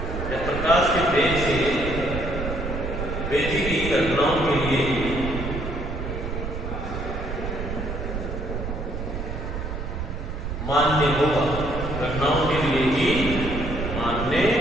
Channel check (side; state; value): right; noise; rumble, 5 dB below the sound